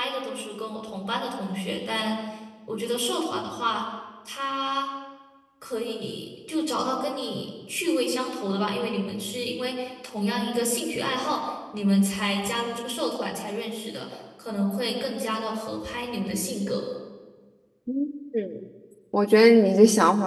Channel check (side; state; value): both; identical; correlation 1.00